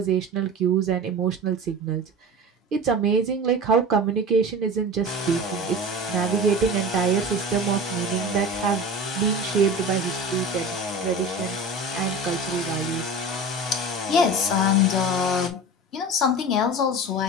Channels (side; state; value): both; normal; correlation 0.33